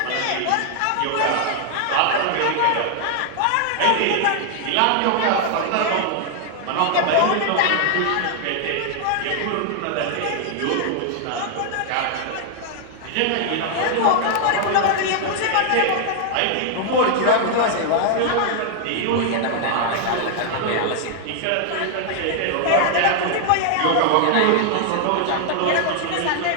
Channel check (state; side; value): different; both; correlation 0.00